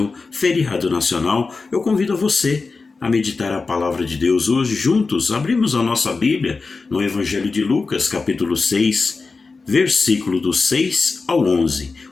feriado nacional, eu convido a você a meditar a palavra de Deus hoje. Juntos, abrimos a nossa Bíblia no Evangelho de Lucas, capítulo 6, versículo do 6 ao 11.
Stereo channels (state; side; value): quieter; right; 4.2 dB